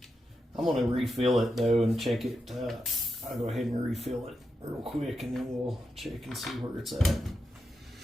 I'm going to refill it, though, and check it. I'll go ahead and refill it real quick, and then we'll check and see where it's at.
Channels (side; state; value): both; normal; correlation 0.87